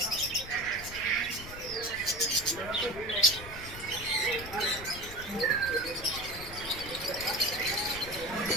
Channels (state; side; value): noise; left; rumble, 13 dB below the sound